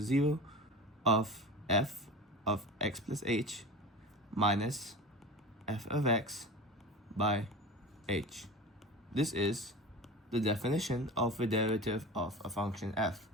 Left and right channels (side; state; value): both; normal; correlation 0.33